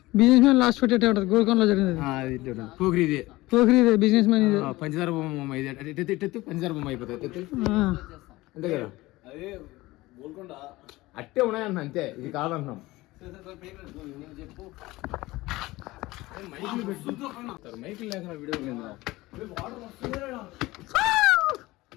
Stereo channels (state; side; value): quieter; right; 19.4 dB